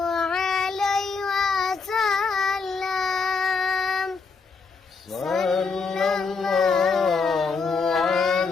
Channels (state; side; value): quieter; right; 4.8 dB